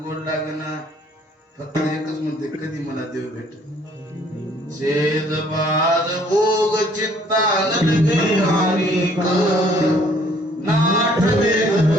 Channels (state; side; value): normal; both; correlation 0.61